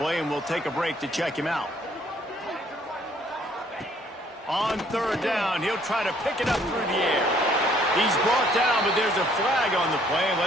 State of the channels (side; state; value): both; normal; correlation 0.62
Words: and we'll take a break to check him out. On 3rd down, he'll try to pick it up through the air. He's brought down, but there's a flag on the play.